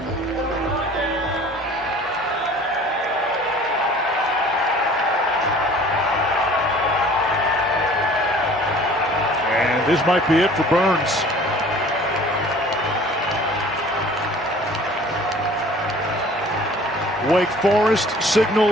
And this might be it for Burns. Wake Forest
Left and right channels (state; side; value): normal; both; correlation 0.49